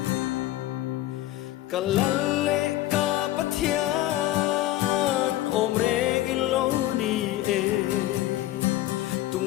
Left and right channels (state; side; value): quieter; right; 15.2 dB